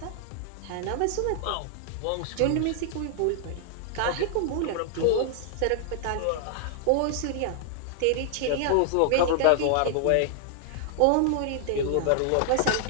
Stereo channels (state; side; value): different; both; correlation -0.01